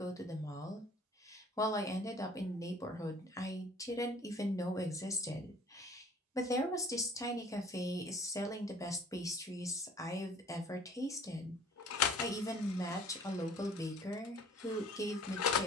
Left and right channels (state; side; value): normal; both; correlation 0.51